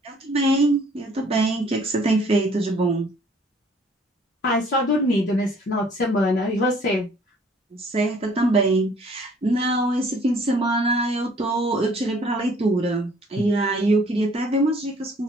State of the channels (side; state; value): both; normal; correlation 0.58